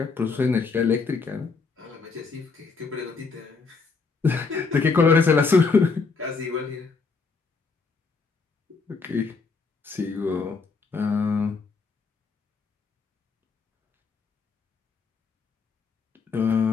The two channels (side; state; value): right; quieter; 4.6 dB